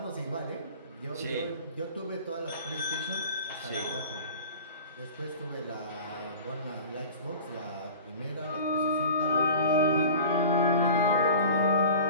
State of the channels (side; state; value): both; inverted; correlation -0.39